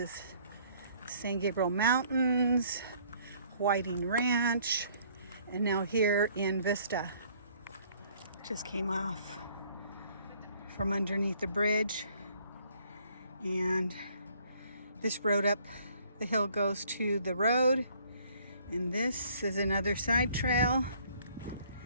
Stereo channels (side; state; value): both; inverted; correlation -0.61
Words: San Gabriel Mountains, Whiting Ranch, and now here in Vista. Just came off from underneath the bridge, and this road up the hill goes to the road, and this is another side trail